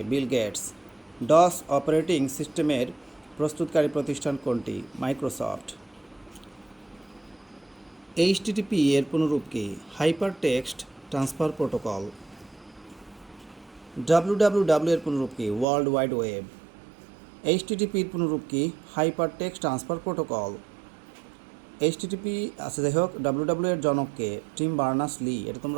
Bill Gates. ডস অপারেটিং সিস্টেমের প্রস্তুতকারী প্রতিষ্ঠান কোনটি? মাইক্রোসফট। এইচটিটিপি এর পুনরূপ কি? Hyper text transfer protocol. WWW এর পুনরূপ কি? World wide web. এইচটিটিপির পুনরূপ কি? Hyper text transfer protocol. HTTP আছে, যাই হোক। ডাব্লিউডাব্লিউ এর জনককে? Team Berners-Lee. এটা তোমরা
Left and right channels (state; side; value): drops out; left; at 15.7 s